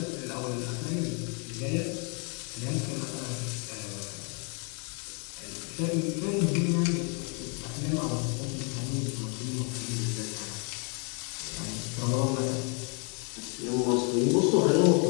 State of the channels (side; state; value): right; quieter; 36.4 dB